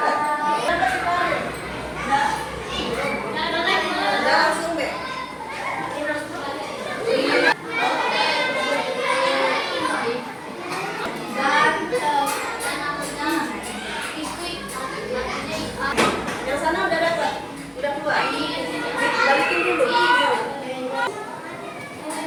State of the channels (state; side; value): identical; both; correlation 1.00